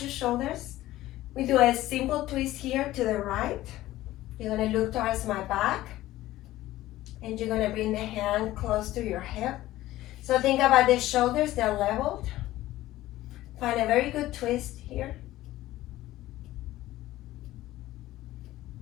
your shoulders. We do a simple twist here to the right. You're going to look towards my back. And you're going to bring the hand close to your hip. So think about the shoulders, they're leveled. Find a very good twist here.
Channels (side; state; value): right; quieter; 15.7 dB